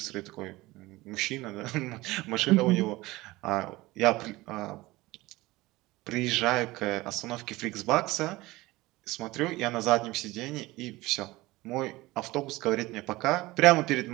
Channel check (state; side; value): quieter; left; 19.8 dB